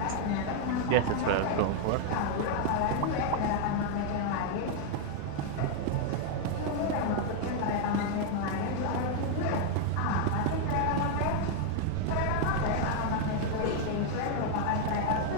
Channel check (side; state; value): both; different; correlation 0.00